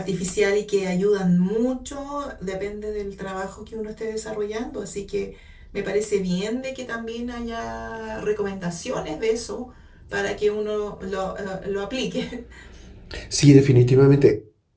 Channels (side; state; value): both; identical; correlation 1.00